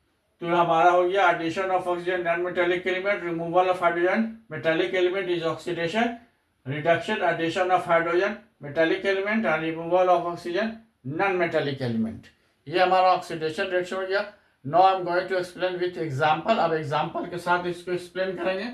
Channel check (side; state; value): both; identical; correlation 1.00